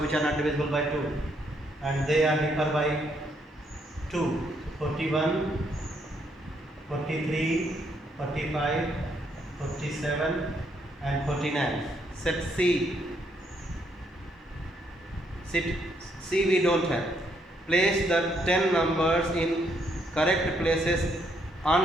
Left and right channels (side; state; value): both; normal; correlation 0.73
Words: are not divisible by 2 and they are differ by 2. 41, 43, 45, 47 and 49. Set C. Set C we don't have. Place the 10 numbers in correct places